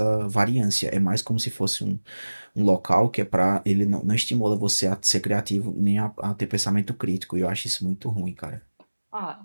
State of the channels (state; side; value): inverted; both; correlation -1.00